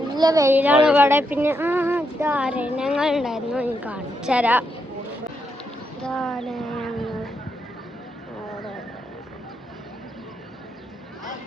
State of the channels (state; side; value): normal; both; correlation 0.80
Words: വെയിലാണ് ഇവിടെ. പിന്നെ അരണ്യങ്ങൾ ഉണ്ടായിരുന്നു, എനിക്ക് കാണിച്ചു തരാം.